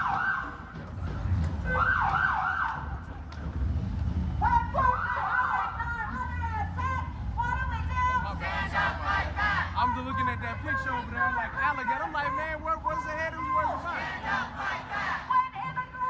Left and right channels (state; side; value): identical; both; correlation 1.00